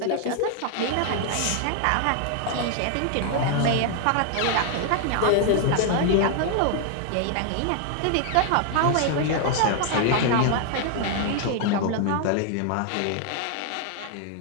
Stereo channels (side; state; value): both; different; correlation 0.00